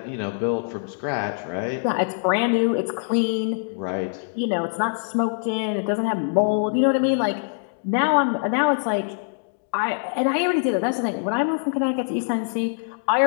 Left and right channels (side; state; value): right; silent; digital silence